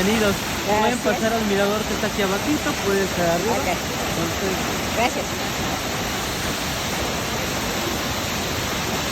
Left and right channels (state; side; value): identical; both; correlation 1.00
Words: Pueden Gracias. pasar al mirador que está aquí abajito, puede estar arriba. Ok, Entonces, gracias.